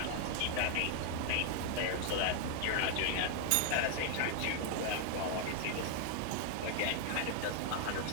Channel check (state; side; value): different; both; correlation 0.00